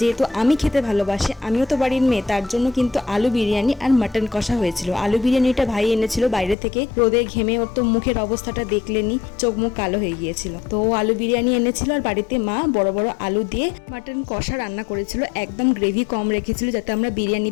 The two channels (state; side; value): drops out; right; at 6.6 s